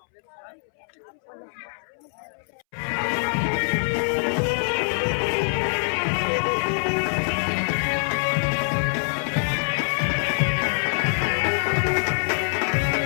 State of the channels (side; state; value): right; silent; 62 dB below the other